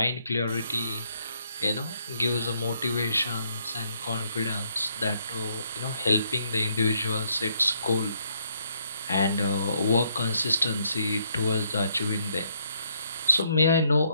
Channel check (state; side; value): inverted; both; correlation -0.72